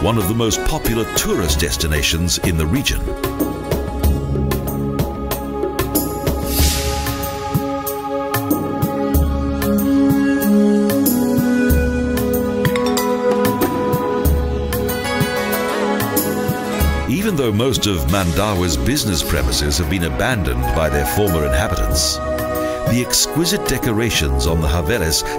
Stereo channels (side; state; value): both; identical; correlation 1.00